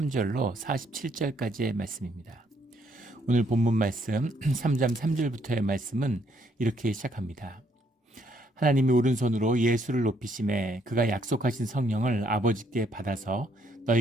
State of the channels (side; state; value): both; normal; correlation 0.70